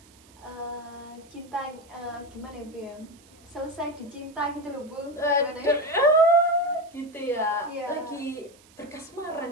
cinta gimana ya, Bu ya? Selesai dicinta gitu loh, Bu. Gimana ya? Gitu ya. Iya. Lagi berkasmaran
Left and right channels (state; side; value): noise; right; hiss, 27 dB below the sound